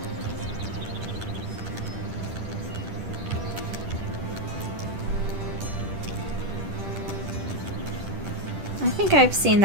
I think I've seen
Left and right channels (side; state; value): left; late; 10 ms